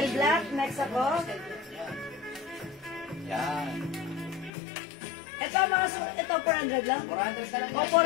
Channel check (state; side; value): drops out; right; at 4.5 s